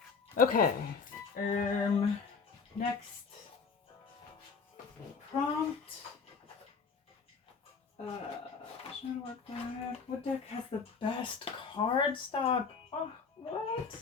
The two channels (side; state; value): right; quieter; 5.3 dB